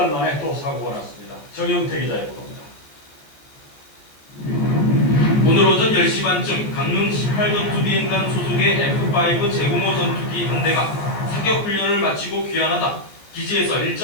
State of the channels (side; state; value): right; late; 14 ms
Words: 만에 또 사고가 났습니다. 정영태 기자의 보도입니다. 오늘 오전 10시 반쯤 강릉 18전투 비행단 소속의 F-5 제공호 전투기 한 대가 사격 훈련을 마치고 귀환하다 기지에서